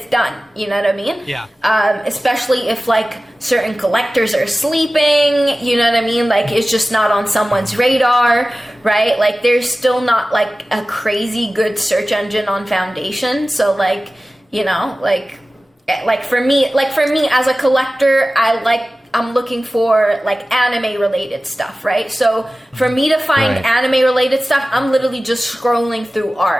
done, you know what I mean? Yeah. Especially if like certain collectors are sleeping, you know what I mean? Like it's just not on someone's radar, right? Like there's still not like a crazy good search engine on Foundation. So like, you know, like for me as a collector, I'm looking for like anime related stuff, right? So for me to find anime related stuff, I'm literally just scrolling through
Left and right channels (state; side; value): normal; both; correlation 0.96